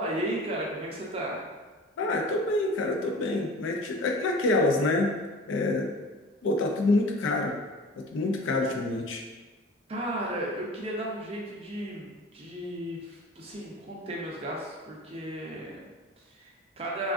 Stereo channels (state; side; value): normal; both; correlation 0.40